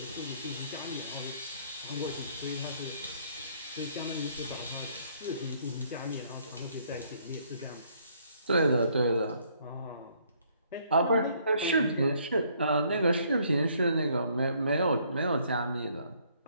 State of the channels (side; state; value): both; inverted; correlation -0.65